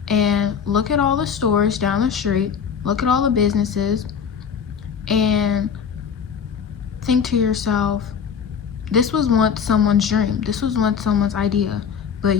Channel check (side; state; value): right; quieter; 7.0 dB